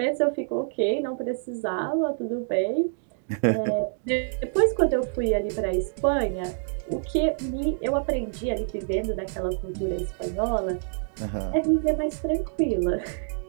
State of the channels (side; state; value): left; silent; digital silence